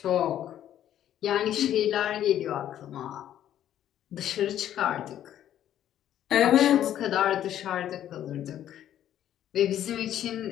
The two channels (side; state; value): right; quieter; 11.3 dB